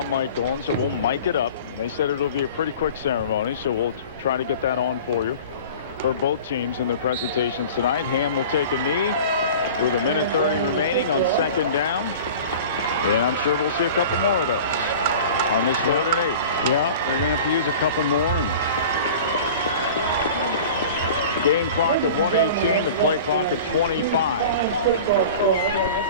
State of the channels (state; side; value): inverted; both; correlation -0.39